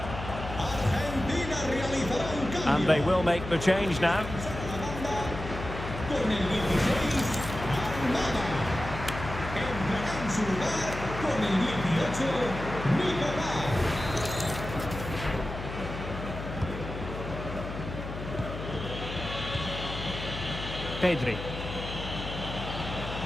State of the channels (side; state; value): left; noise; hum, 8 dB below the sound